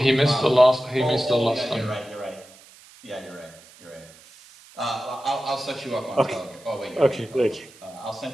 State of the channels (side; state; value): right; noise; hiss, 23 dB below the sound